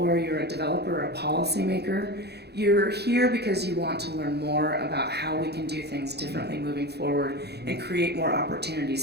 you're a developer or a policymaker, you're here because you want to learn more about how we can do things differently moving forward and create more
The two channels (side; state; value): left; late; 0.48 ms